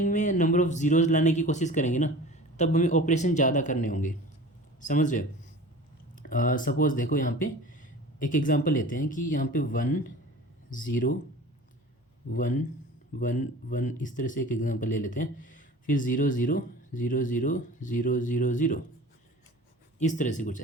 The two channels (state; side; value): normal; both; correlation 0.40